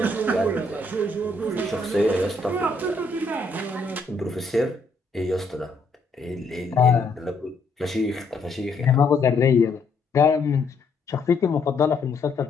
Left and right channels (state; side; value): quieter; right; 3.4 dB